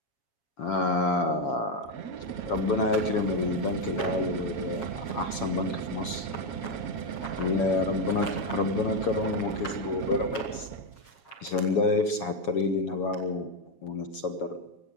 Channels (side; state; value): right; late; 7.3 ms